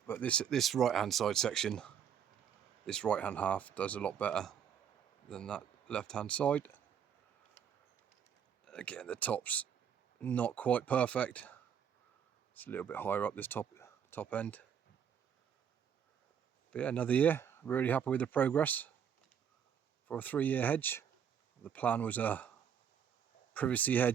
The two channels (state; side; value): quieter; left; 8.2 dB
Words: But this right hand side section, this right hand half does a lot better than that left hand side. Again, the top's not quite perfect. It's a little bit higher up this top end. But yeah, another year. Really happy with the progress for a 3-year hedge. The plan was a privacy